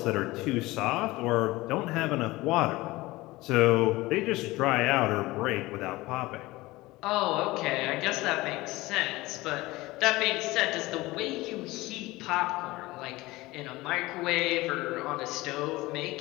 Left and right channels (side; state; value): right; quieter; 19.9 dB